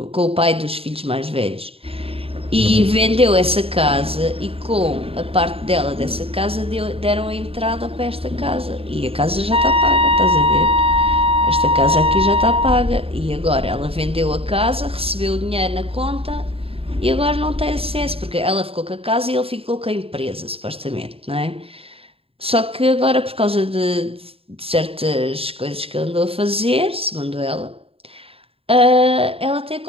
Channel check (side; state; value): left; late; 0.27 ms